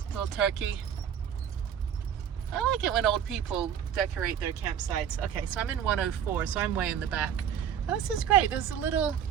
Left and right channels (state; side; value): quieter; left; 8.8 dB